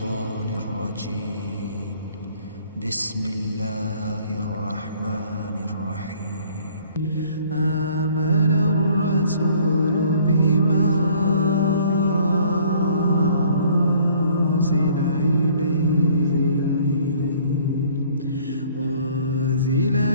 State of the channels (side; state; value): both; inverted; correlation -0.57